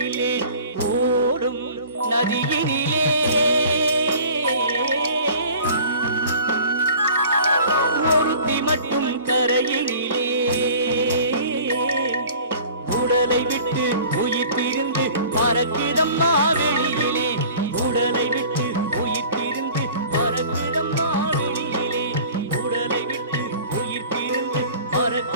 ஓடும் நதியினிலே ஒருத்தி மட்டும் கரையினிலே, உடலை விட்டு உயிர் பிரிந்து பறக்குதம்மா வெளியிலே, உடலை விட்டு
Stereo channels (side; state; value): both; inverted; correlation -0.46